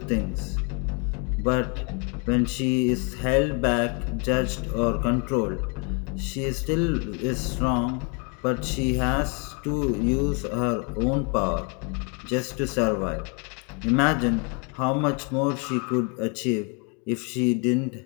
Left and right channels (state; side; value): quieter; right; 35.4 dB